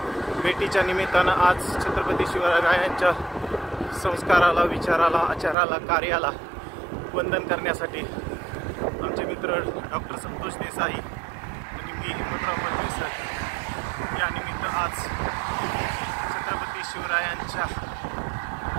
भेटीच्या निमित्तानं आज छत्रपती शिवरायांच्या संस्काराला, विचाराला, आचाराला, कार्याला वंदन करण्यासाठी आमचे मित्र डॉक्टर संतोष देसाई आणि मी हिम्मतराव मलमे सर या निमित्त आज छत्रपती शिवरायांच्या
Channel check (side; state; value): left; drops out; at 5.6 s